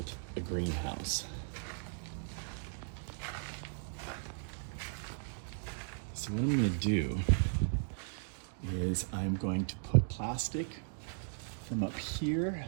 a greenhouse. So what I'm going to do is I'm going to put plastic from up here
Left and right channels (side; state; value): left; silent; digital silence